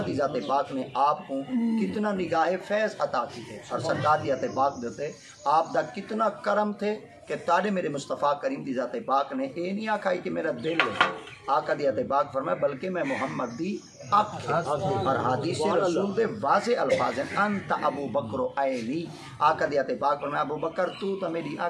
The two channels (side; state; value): both; identical; correlation 1.00